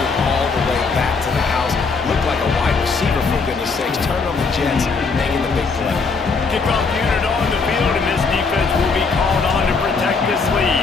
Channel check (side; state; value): right; quieter; 4.6 dB